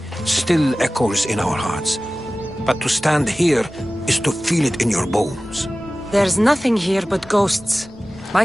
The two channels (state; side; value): noise; right; rumble, 28 dB below the sound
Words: still echoes in our hearts, but to stand here is to feel it in your bones. There's nothing here but ghosts. My